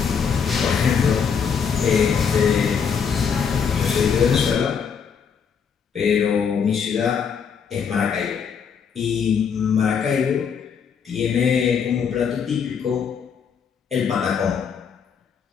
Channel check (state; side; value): quieter; right; 6.8 dB